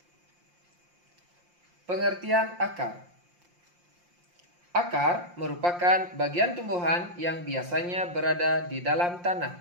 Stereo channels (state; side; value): late; left; 5.7 ms